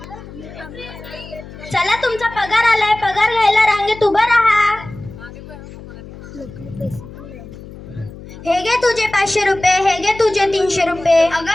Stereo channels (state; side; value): noise; left; hum, 16 dB below the sound